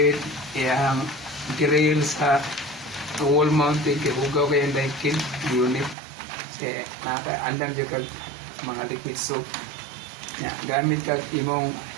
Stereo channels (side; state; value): left; drops out; at 6.0 s